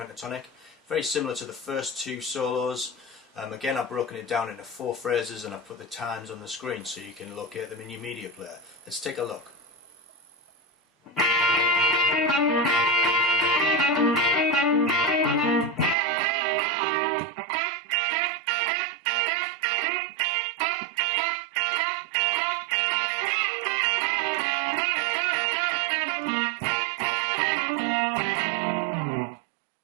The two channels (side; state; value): left; drops out; at 16.0 s